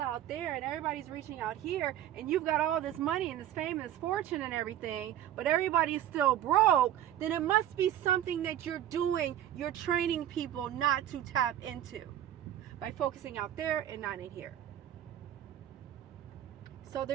out there and everybody's reaching out here, and you've got all this money and this fame and this fortune and everything, but everybody's still broke, then it must be something that you're doing. You're training people not to tap into by focusing out there and not in here. So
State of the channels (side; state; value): left; quieter; 11.7 dB